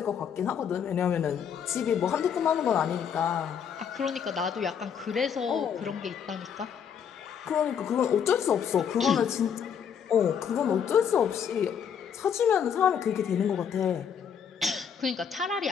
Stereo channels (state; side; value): quieter; right; 7.7 dB